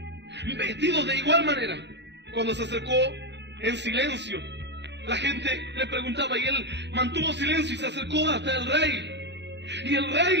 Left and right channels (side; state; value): left; late; 0.51 ms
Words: vestidos de igual manera. Cuando se acercó en silencio, la gente le preguntaba y él mantuvo silencio y se acercó hasta el rey. Y el rey